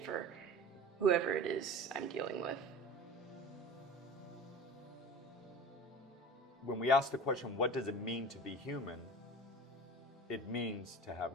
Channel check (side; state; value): both; normal; correlation 0.37